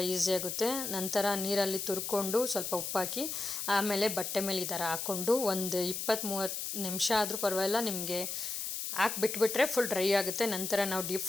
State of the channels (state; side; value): noise; left; hiss, 4 dB below the sound